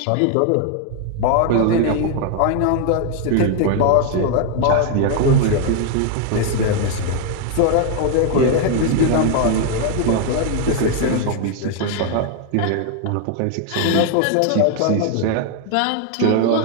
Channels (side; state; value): both; different; correlation 0.00